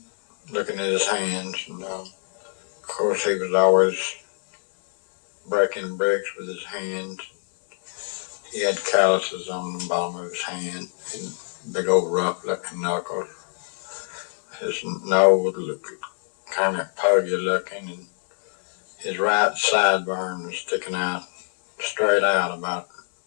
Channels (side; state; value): right; silent; digital silence